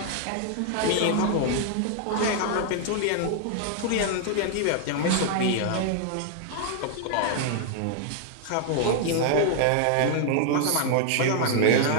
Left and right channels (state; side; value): different; both; correlation 0.00